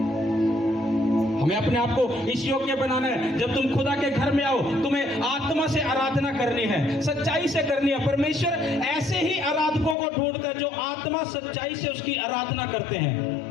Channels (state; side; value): drops out; right; at 10.0 s